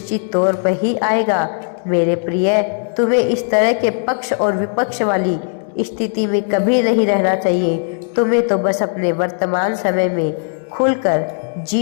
तौर पर ही आएगा। मेरे प्रिय, तुम्हें इस तरह के पक्ष और विपक्ष वाली स्थिति में कभी नहीं रहना चाहिए। तुम्हें तो बस अपने वर्तमान समय में खुलकर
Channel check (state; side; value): silent; right; digital silence